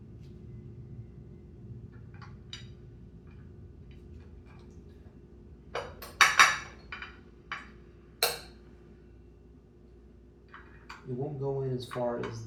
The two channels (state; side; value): identical; both; correlation 1.00